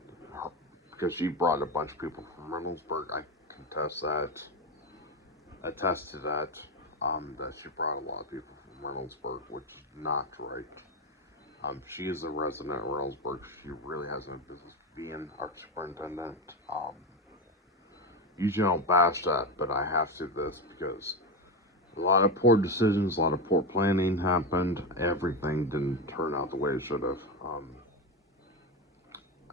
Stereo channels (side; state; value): both; normal; correlation 0.16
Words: because she brought a bunch of people from Reynoldsburg. I attest to that, that she brought a lot of people from Reynoldsburg, which is not right. She is a resident of Reynoldsburg. She really has no business being our superintendent. Usually I don't bash that, but I have to this because a lot of poor decisions, a lot of poor planning happened. Everything didn't turn out the way it should have.